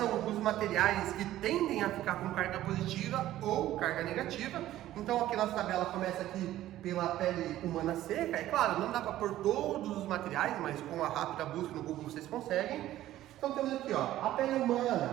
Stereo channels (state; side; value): quieter; left; 14.0 dB